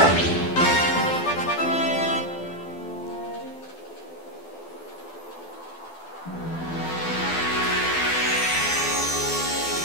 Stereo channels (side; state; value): right; late; 12 ms